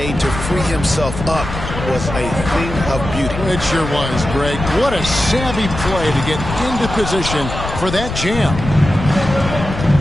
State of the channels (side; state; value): left; noise; rumble, 7 dB below the sound